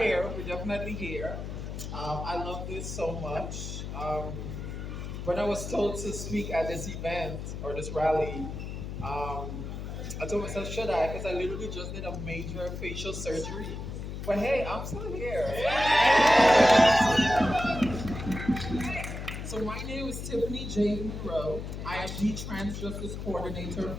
We're definitely here. I love this so much. When I was told to speak at this event or this rally, I told myself, should I? Because I literally just did a major facial surgery. But hey, I'm still here. So my name is Tiffany J. Monroe. I am the Trans Justice Coordinator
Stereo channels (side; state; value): left; noise; hum, 6 dB below the sound